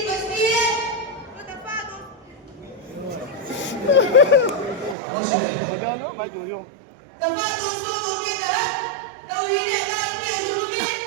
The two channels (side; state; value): left; drops out; at 5.0 s